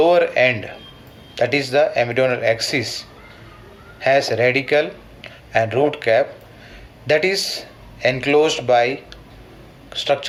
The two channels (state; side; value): identical; both; correlation 1.00